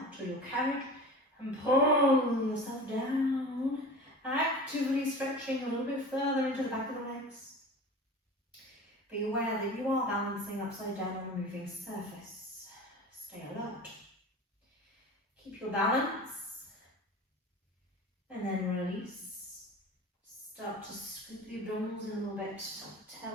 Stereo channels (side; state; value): both; normal; correlation 0.36